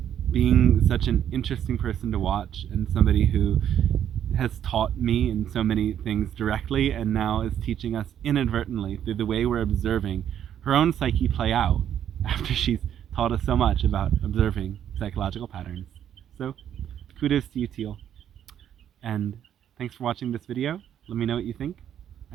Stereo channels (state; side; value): quieter; left; 10.0 dB